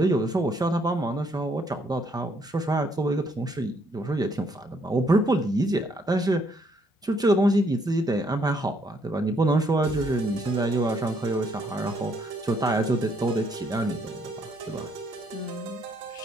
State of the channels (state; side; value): normal; both; correlation 0.70